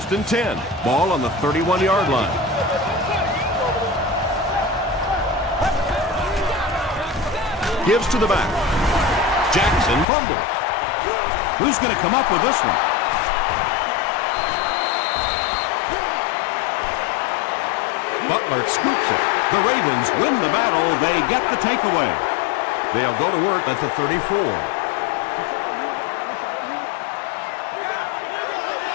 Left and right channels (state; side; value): drops out; right; at 10.1 s